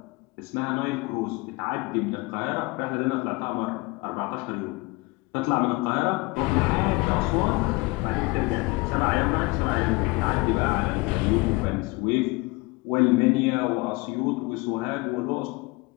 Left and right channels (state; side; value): quieter; right; 24.3 dB